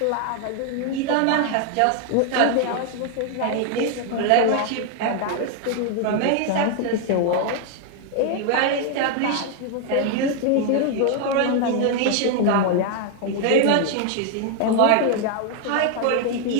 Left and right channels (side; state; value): both; different; correlation 0.00